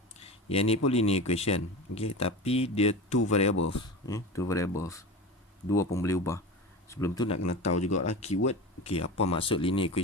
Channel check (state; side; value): normal; both; correlation 0.29